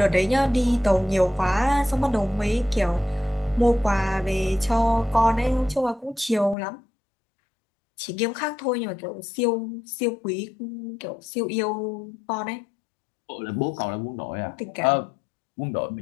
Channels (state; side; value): drops out; right; at 6.6 s